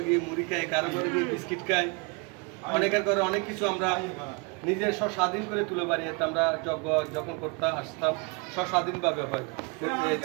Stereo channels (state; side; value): quieter; left; 31.0 dB